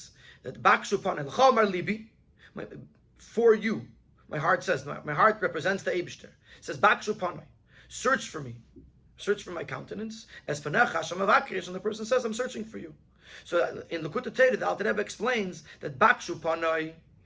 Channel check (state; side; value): identical; both; correlation 1.00